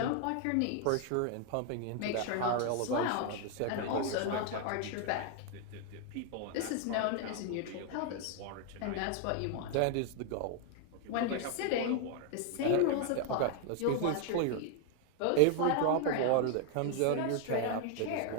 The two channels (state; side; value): different; both; correlation 0.00